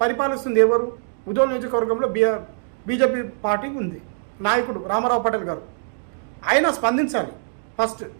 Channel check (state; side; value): silent; left; digital silence